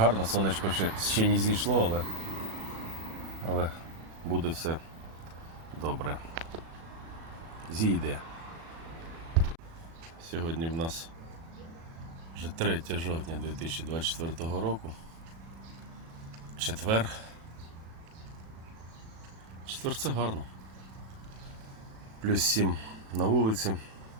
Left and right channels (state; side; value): late; left; 37 ms